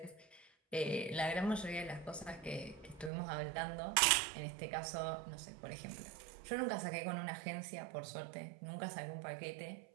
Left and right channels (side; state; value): left; drops out; at 3.1 s